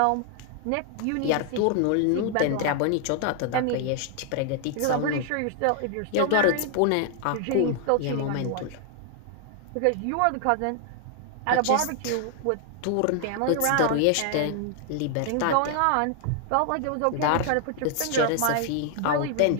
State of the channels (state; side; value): different; both; correlation 0.00